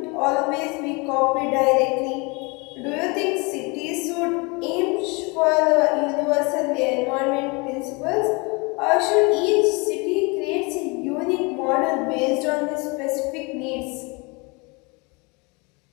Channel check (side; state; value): right; quieter; 28.6 dB